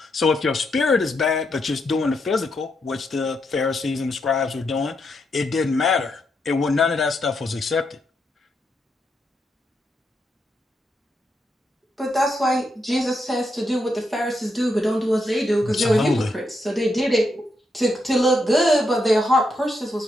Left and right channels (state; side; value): normal; both; correlation 0.81